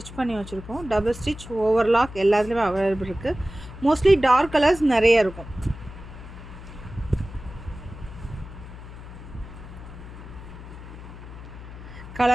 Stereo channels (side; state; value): left; noise; hum, 14 dB below the sound